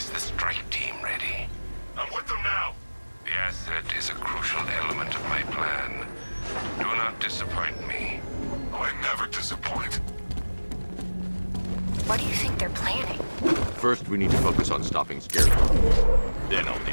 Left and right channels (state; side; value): inverted; both; correlation -1.00